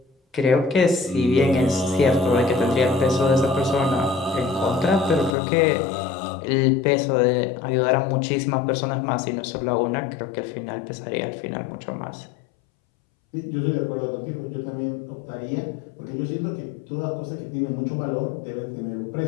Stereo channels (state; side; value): drops out; right; at 5.3 s